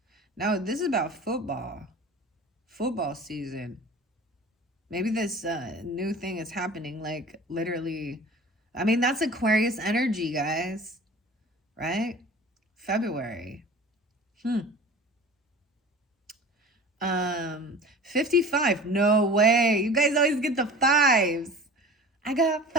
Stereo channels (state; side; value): normal; both; correlation 0.39